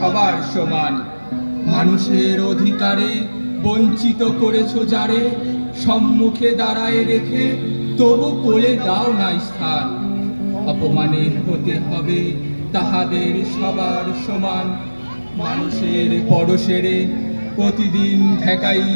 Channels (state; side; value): inverted; both; correlation -1.00